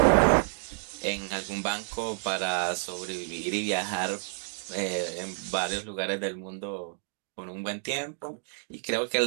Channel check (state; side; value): silent; left; 58 dB below the other